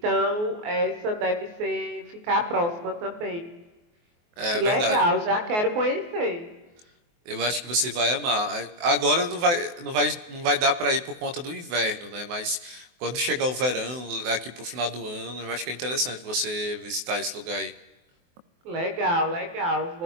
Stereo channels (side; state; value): left; late; 24 ms